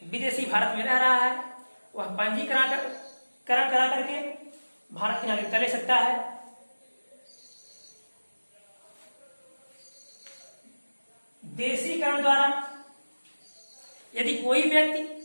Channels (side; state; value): both; inverted; correlation -1.00